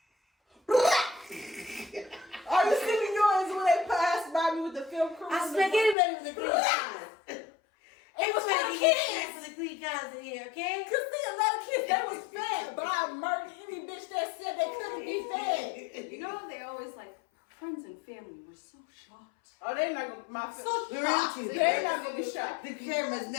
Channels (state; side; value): drops out; right; at 6.0 s